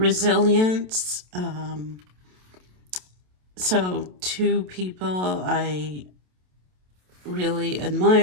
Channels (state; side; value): late; left; 27 ms